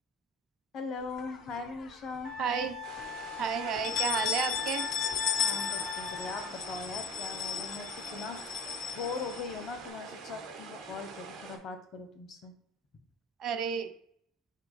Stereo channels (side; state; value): both; normal; correlation 0.36